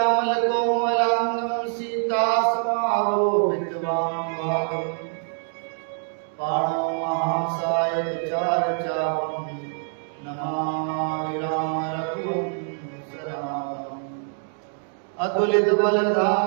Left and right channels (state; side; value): silent; left; 62 dB below the other